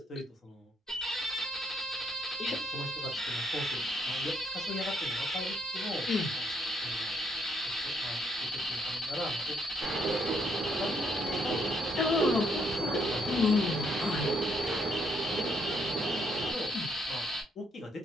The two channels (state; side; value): normal; both; correlation 0.73